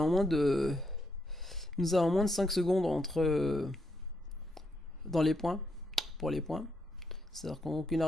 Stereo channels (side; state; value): both; normal; correlation 0.79